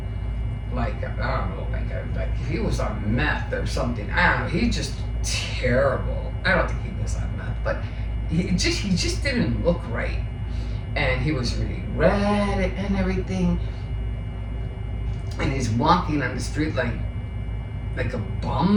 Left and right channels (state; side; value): identical; both; correlation 1.00